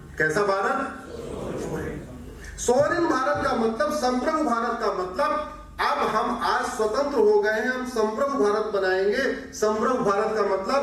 कैसा भारत? सोवरिन भारत का मतलब, संप्रभु भारत का मतलब, अब हम आज स्वतंत्र हो गए हैं, हम संप्रभु भारत बनाएंगे। संप्रभु भारत का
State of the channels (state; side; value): identical; both; correlation 1.00